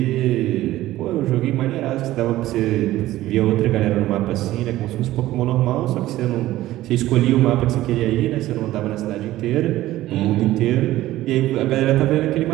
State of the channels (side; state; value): left; quieter; 15.5 dB